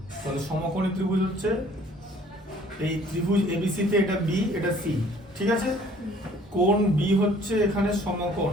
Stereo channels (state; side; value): normal; both; correlation 0.56